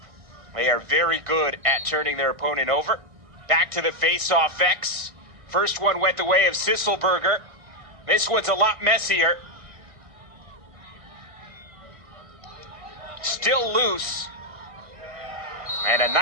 They are very good at turning their opponent over. Back to the face-off X. First one went the way of Sisselberger. This one's a lot messier. Still loose. And a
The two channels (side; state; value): left; late; 1.5 ms